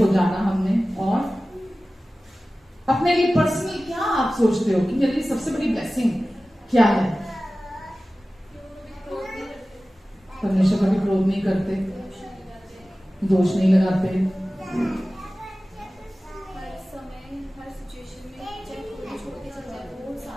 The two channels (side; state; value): both; normal; correlation 0.96